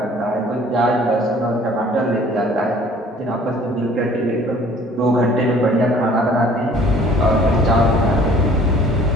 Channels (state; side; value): normal; both; correlation 0.54